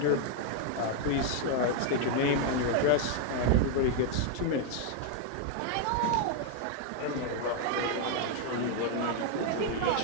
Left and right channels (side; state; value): both; different; correlation 0.01